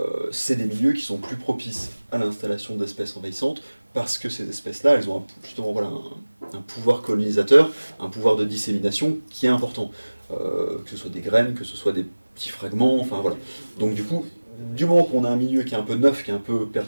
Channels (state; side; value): inverted; both; correlation -1.00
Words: C'est des milieux qui sont plus propices à l'installation d'espèces envahissantes parce que ces espèces-là, elles ont justement voilà, un pouvoir colonisateur, un pouvoir de dissémination qui est important. Que ce soit des graines, que ce soit des petits fragments, enfin voilà. Donc du coup, du moment qu'on a un milieu qui est un peu neuf, qui est un peu